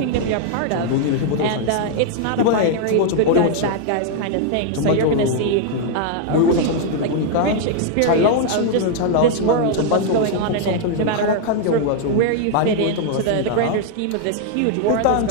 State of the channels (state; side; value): different; both; correlation 0.00